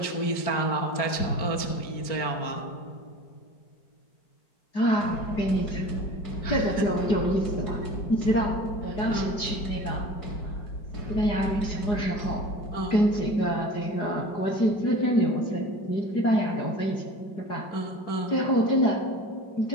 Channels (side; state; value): right; late; 4.9 ms